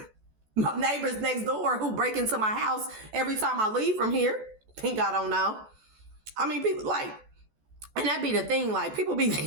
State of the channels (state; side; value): late; left; 14 ms